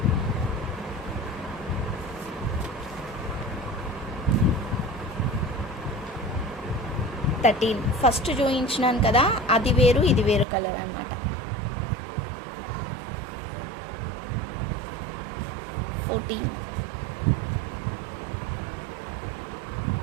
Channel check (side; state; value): left; drops out; at 10.5 s